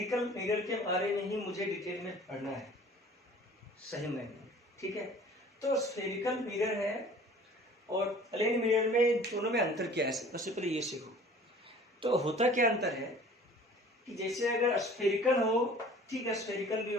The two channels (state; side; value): normal; both; correlation 0.48